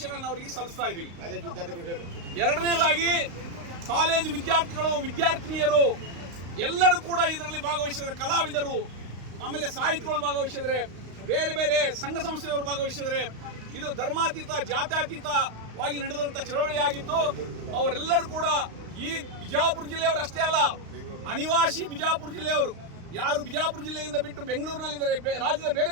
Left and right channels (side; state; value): left; late; 35 ms